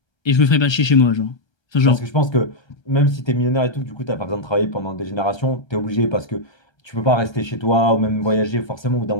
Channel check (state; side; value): late; right; 1.3 ms